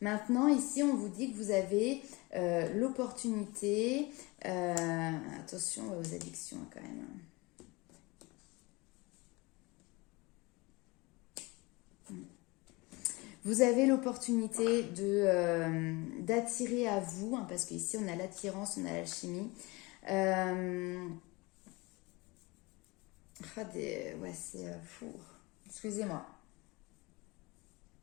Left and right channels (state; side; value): quieter; right; 24.5 dB